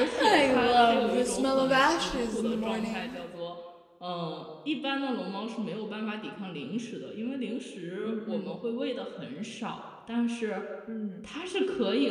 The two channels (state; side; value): identical; both; correlation 1.00